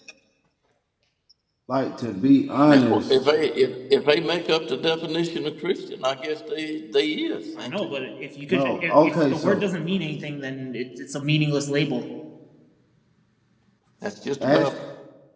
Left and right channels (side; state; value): both; identical; correlation 1.00